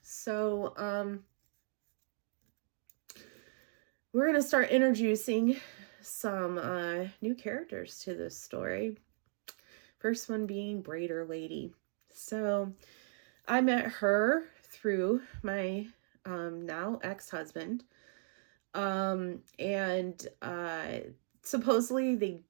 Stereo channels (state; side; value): silent; left; digital silence